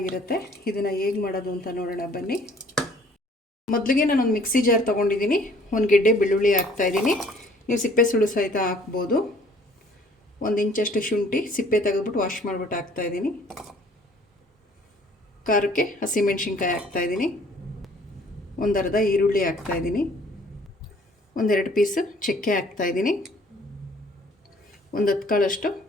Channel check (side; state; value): both; normal; correlation 0.56